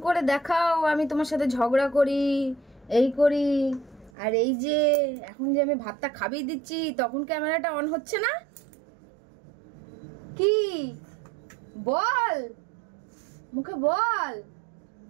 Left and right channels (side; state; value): left; drops out; at 4.1 s